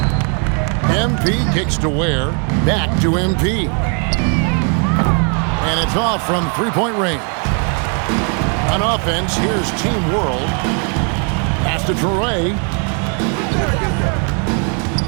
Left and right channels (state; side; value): quieter; left; 39.7 dB